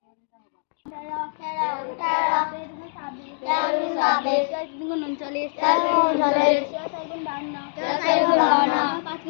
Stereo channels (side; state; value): right; silent; 63 dB below the other